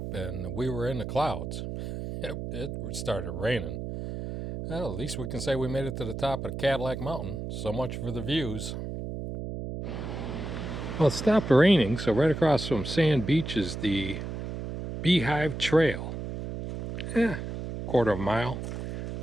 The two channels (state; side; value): noise; right; hum, 6 dB below the sound